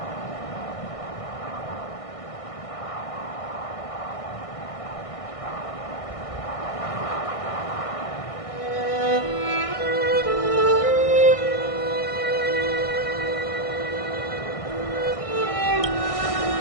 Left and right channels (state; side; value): late; right; 1.6 ms